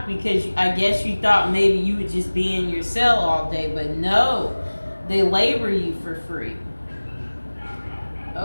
because I guess you thought maybe you would just be in your cell all day, but no, they labor you for free.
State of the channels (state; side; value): inverted; both; correlation -1.00